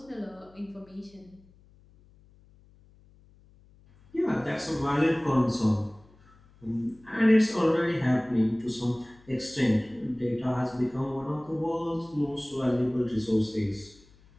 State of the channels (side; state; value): left; noise; hum, 28 dB below the sound